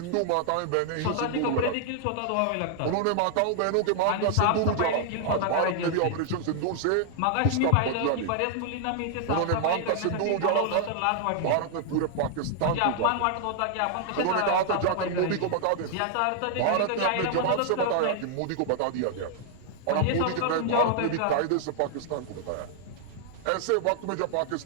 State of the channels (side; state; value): both; different; correlation -0.01